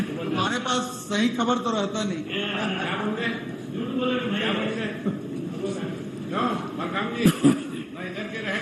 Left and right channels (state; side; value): identical; both; correlation 1.00